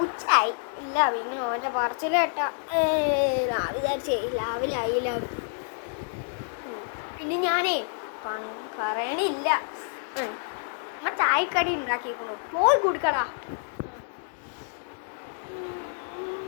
ഉച്ചായി ഇല്ല. പിന്നെ ഓൻ്റെ പറച്ചിൽ കേട്ടാ രാവിലെ ആയില്ല. പിന്നെ ഞാനേ പറയണില്ല. ചായക്കടി ഉണ്ടാക്കിക്കണു, പോയി കുടിക്കടാ.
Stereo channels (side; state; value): right; silent; digital silence